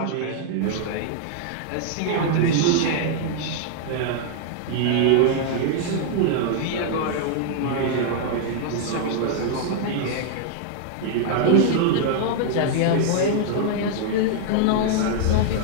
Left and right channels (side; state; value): both; different; correlation -0.01